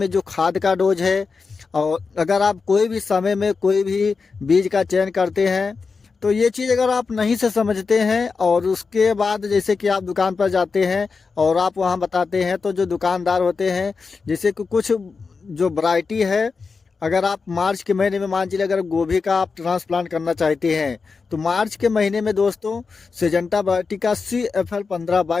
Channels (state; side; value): quieter; right; 4.8 dB